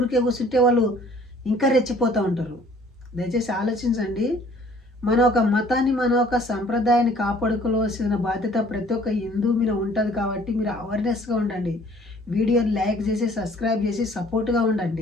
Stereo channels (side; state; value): both; normal; correlation 0.55